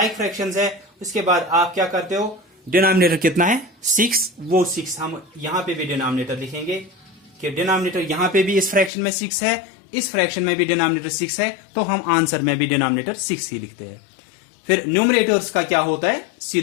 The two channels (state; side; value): drops out; right; at 8.9 s